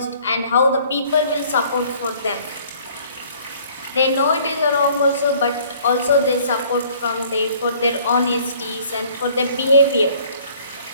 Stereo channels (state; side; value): inverted; both; correlation -0.56